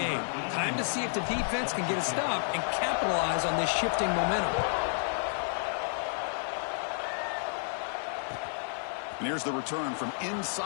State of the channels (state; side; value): silent; right; digital silence